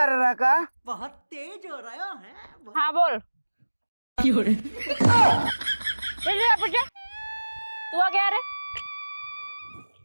रहा का बहुत तेज हो रहा है हाँ बोल। पूछे तू आ गया रे?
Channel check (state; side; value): inverted; both; correlation -1.00